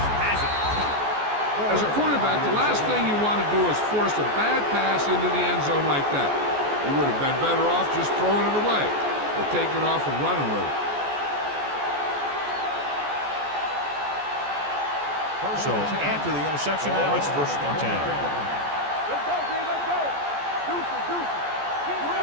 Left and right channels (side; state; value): left; late; 14 ms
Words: has it. As a quarterback, the last thing you want to do is force a bad pass into the end zone like that. You would have been better off just throwing it away or taking off and running with it. So after the interception, now it's 1st and 10. Let's go, B, let's go. Deuces. Keep